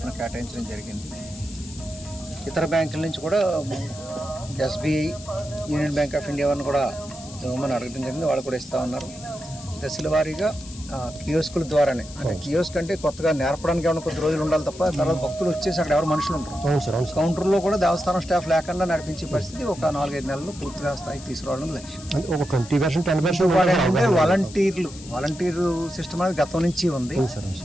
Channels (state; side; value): noise; left; hiss, 17 dB below the sound